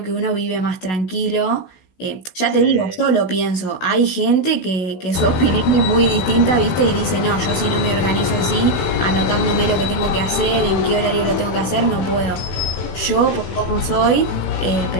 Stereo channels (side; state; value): right; late; 16 ms